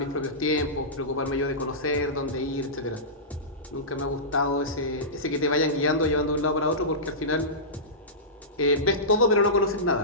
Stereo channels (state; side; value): normal; both; correlation -0.18